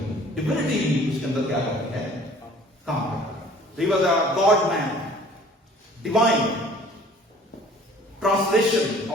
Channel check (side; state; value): both; normal; correlation 0.51